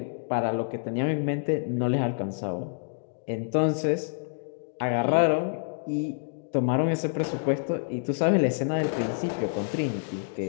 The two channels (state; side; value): silent; right; digital silence